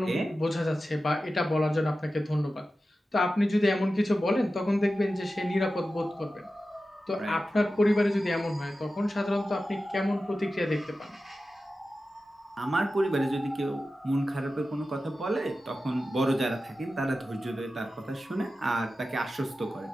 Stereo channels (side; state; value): both; normal; correlation 0.93